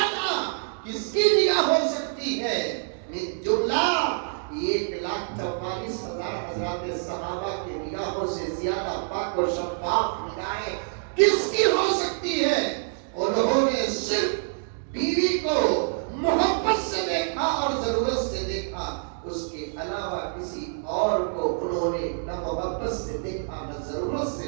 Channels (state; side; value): silent; left; digital silence